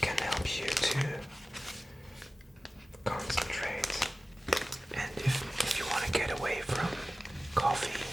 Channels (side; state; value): both; normal; correlation 0.96